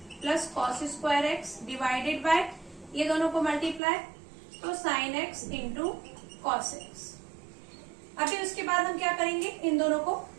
plus cos square x divided by ये दोनों को मल्टीप्लाई, तो sine x into cos x. अभी उसके बाद हम क्या करेंगे, इन दोनों को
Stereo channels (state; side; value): drops out; left; at 3.8 s